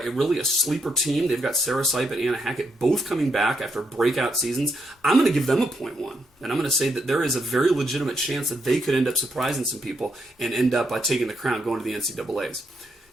really a sleeper team. They've got Sarah Sipe and Anna Hackett both coming back after breakout seasons. I'm going to give them a 0.1, and I'm going to say that there is a very legitimate chance that they could end up surprising some people and end up taking the crown, going to the NCAAs.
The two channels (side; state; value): both; normal; correlation 0.79